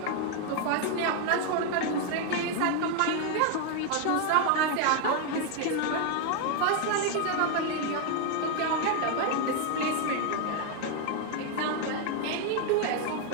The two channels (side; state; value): both; different; correlation 0.01